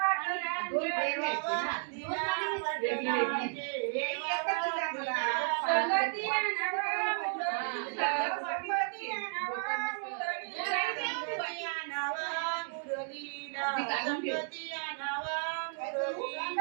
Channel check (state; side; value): silent; left; 56 dB below the other